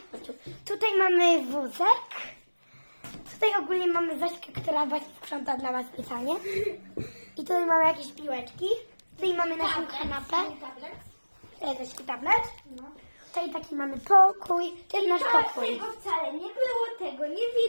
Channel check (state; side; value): inverted; both; correlation -1.00